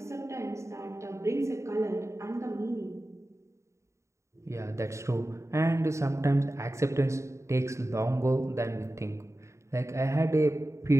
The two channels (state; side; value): late; left; 0.14 ms